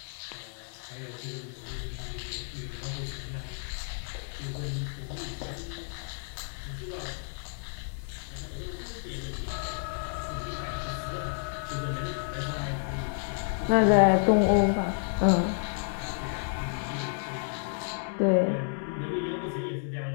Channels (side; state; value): right; silent; digital silence